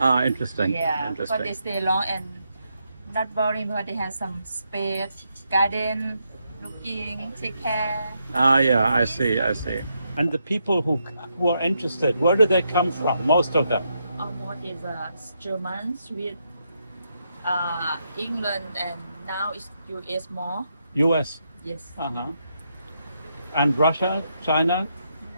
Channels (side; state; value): both; inverted; correlation -0.81